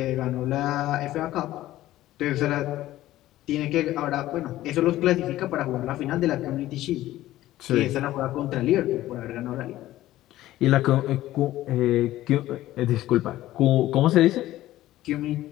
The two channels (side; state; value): right; quieter; 15.1 dB